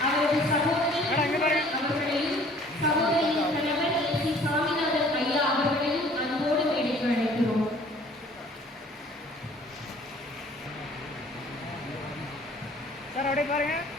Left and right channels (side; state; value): both; normal; correlation 0.54